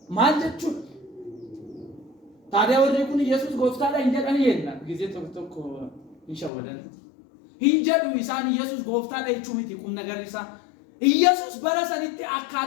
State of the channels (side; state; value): right; drops out; at 6.5 s